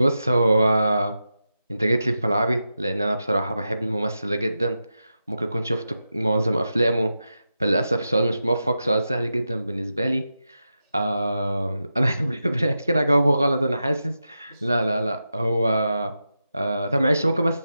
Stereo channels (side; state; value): both; inverted; correlation -0.90